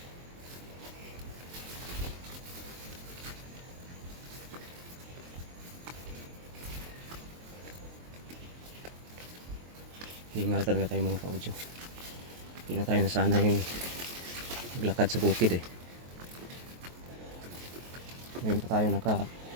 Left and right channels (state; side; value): late; left; 23 ms